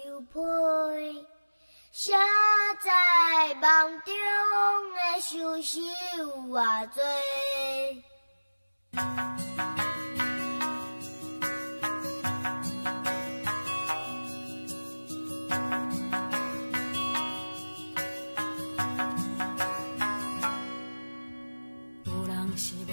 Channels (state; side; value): inverted; both; correlation -1.00